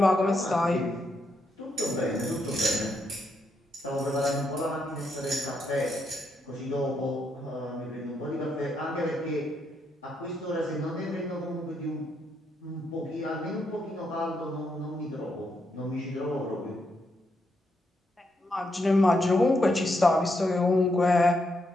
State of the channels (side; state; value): both; normal; correlation 0.79